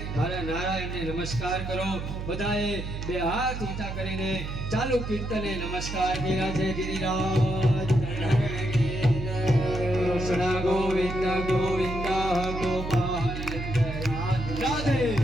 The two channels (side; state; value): right; noise; hum, 6 dB below the sound